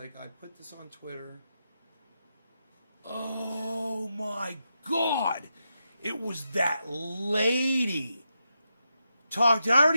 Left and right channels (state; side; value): inverted; both; correlation -0.86